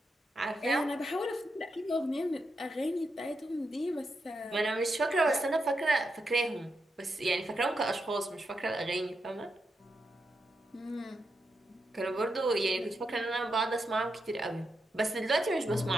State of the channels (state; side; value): normal; both; correlation 0.85